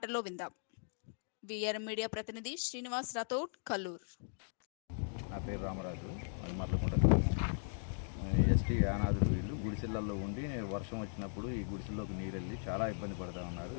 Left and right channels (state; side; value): silent; right; digital silence